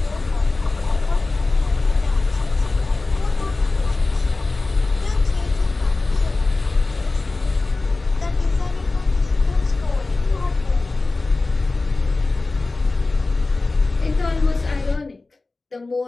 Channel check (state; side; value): quieter; right; 3.4 dB